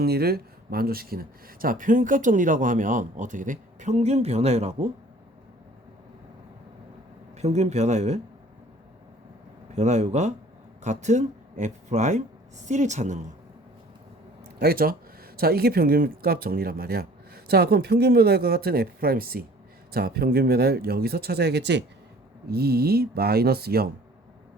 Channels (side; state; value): both; normal; correlation 0.51